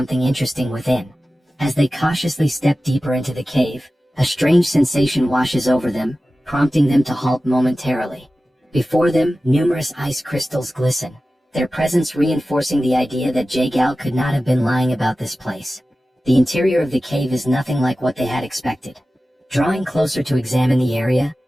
interesting within. As they cautiously step deeper into the cave, a strange sensation washes over them, prompting them to halt momentarily. Before them, numerous ice crystals glisten, their presence reinforcing the idea that Jagal could not have been lying about this place. The interior of the cave is nothing like what they had expected. Drawing closer to examine the area,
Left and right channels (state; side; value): normal; both; correlation 0.95